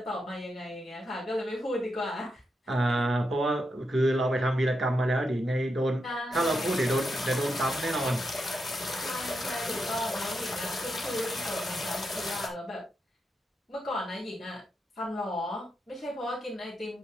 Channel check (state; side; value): normal; both; correlation 0.84